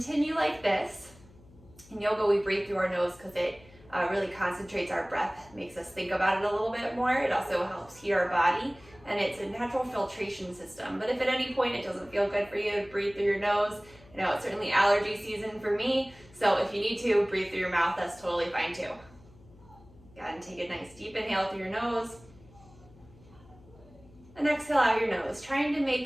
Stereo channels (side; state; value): left; noise; hum, 25 dB below the sound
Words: like this. In yoga, we breathe through our nose because it really concentrates our breath, makes us think about it a little bit more. It also helps heat our body, and it's a natural filtration system. But if at any point it doesn't feel good for you to breathe through your nose, I know it's certainly allergy season for me, so if you need to breathe through your mouth, that's totally fine too. Go ahead and take a nice deep inhale through your nose, and exhale out your nose, trying to